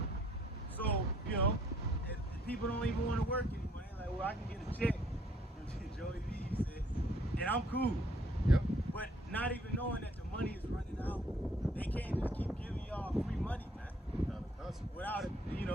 So, if people don't even want to work anymore. They're like, well, I can get a check. Joey V said, and I'm cool. yep. But not even knowing that the money is running out, they can't just keep giving y'all free money, man.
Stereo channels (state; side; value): normal; both; correlation 0.63